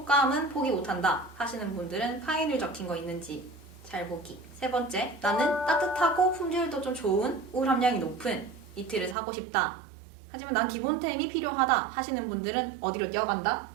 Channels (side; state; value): left; drops out; at 9.2 s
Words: 포기 못한다 하시는 분들은 파인을 적힌 거 있는지 잘 보기. 세 번째, 나는 따뜻하고 품질도 좀 좋은 울 함량이 높은 니트를 사고 싶다. 하지만 난 기본템이 필요하다 하시는 분들은 어디로 뛰어간다?